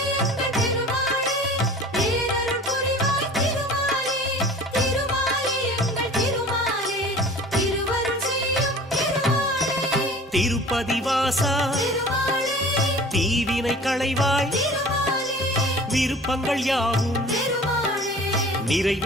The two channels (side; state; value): both; normal; correlation 0.43